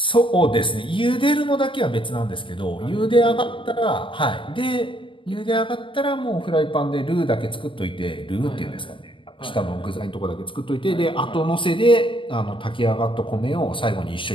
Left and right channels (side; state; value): right; late; 0.25 ms